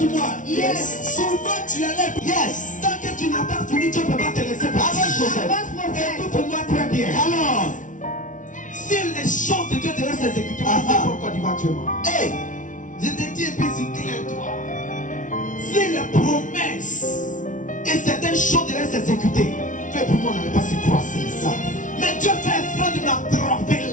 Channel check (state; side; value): late; right; 0.37 ms